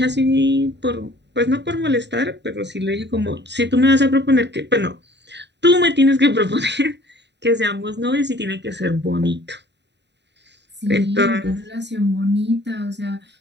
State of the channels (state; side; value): late; left; 0.51 ms